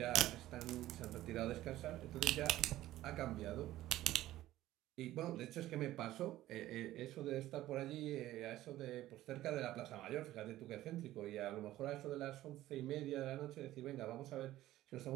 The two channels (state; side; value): quieter; left; 14.9 dB